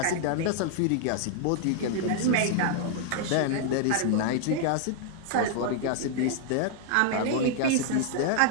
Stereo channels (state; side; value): different; both; correlation 0.00